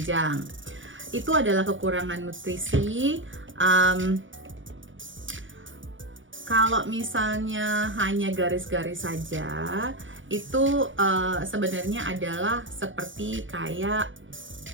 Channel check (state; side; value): late; left; 0.56 ms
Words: Itu adalah kekurangan nutrisi. Kalau misalnya hanya garis-garis saja, itu sebenarnya adalah seperti kayak